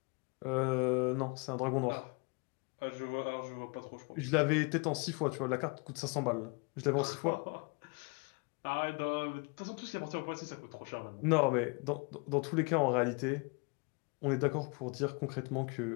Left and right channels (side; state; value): right; quieter; 32.1 dB